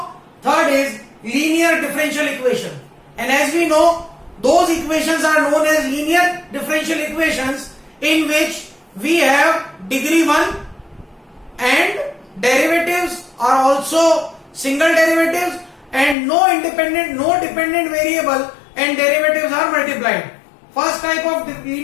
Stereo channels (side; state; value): right; drops out; at 16.2 s